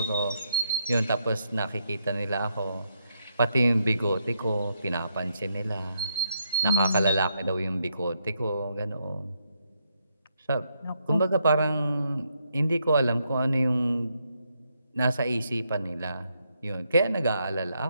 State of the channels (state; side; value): inverted; both; correlation -0.78